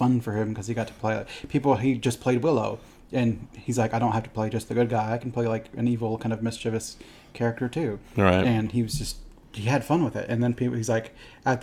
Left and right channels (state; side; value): identical; both; correlation 1.00